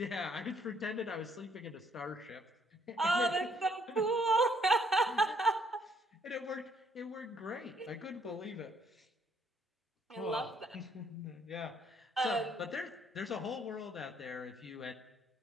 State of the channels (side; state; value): both; normal; correlation 0.68